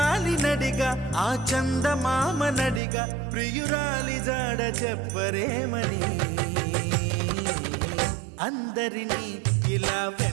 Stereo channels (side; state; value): left; drops out; at 2.8 s